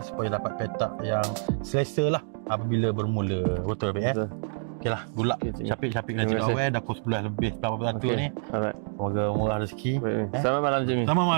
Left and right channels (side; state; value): left; silent; 55 dB below the other